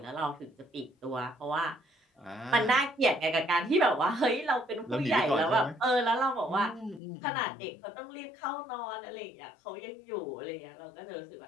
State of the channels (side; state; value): right; drops out; at 7.0 s